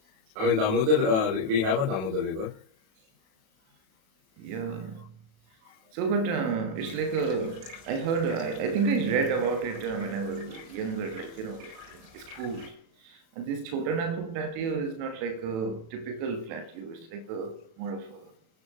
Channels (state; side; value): late; left; 36 ms